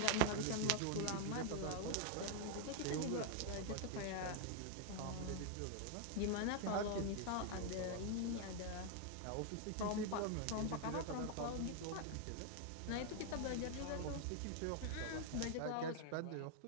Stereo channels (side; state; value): both; different; correlation 0.00